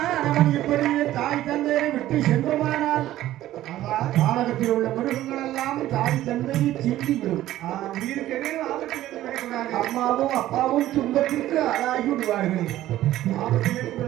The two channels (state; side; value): quieter; left; 14.1 dB